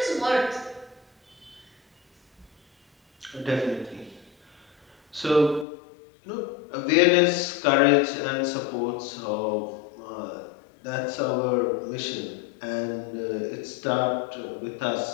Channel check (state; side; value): drops out; right; at 5.7 s